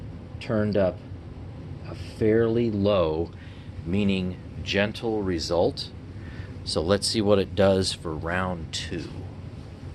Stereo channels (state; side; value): identical; both; correlation 1.00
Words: turned up a fairly low, meaning gentle result. So let's see what it does for round two.